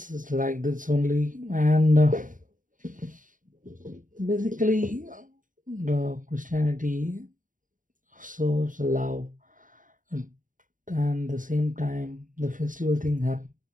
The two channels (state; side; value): late; left; 0.38 ms